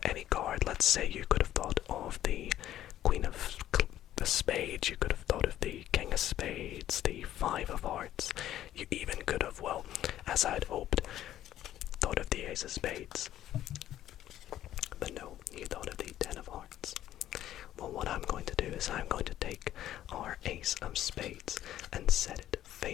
any card. Let's say you could have thought of the Queen of the Spades. You could have thought of the King of Spades, the 5 of hearts. You even could have, well, as I'd hoped, thought of the Ace of Spades. But no, you thought of the 10 of hearts. Well, what I'm going to do is I'm going to take our Ace of Spades and set it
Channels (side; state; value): right; quieter; 12.5 dB